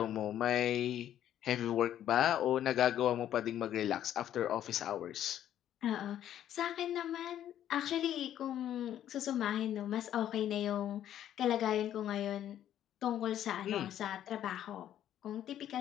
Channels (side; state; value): right; quieter; 11.1 dB